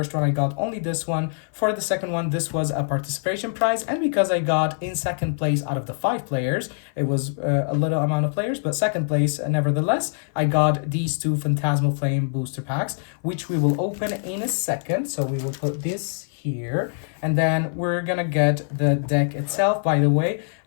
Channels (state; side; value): silent; right; 57 dB below the other